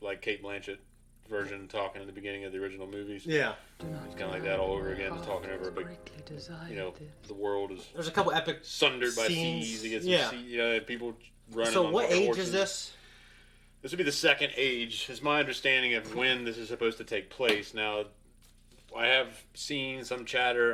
like Cate Blanchett version talking in the beginning of the original movies. Yeah. It's kind of like that all over again, just talking over a big, the world is There's a couple epic sundered by scenes. seas. You get some Yeah. people running So on what fucking age horses. is this? This would be the second age, is my understanding of when this is supposed to take place. Now, I have seen some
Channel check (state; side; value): identical; both; correlation 1.00